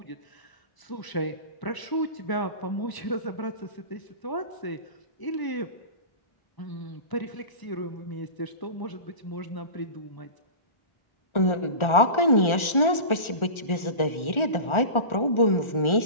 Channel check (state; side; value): late; right; 1.4 ms